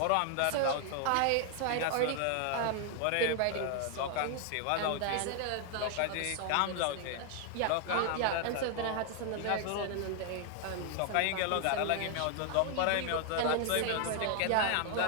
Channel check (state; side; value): different; both; correlation 0.00